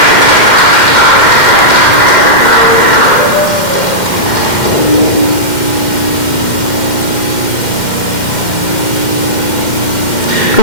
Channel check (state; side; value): late; right; 2.1 ms